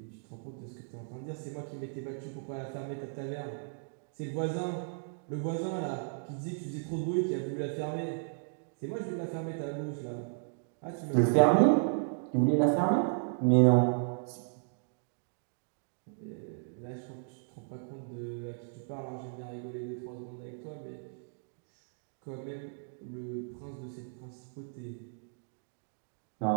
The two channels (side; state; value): left; silent; digital silence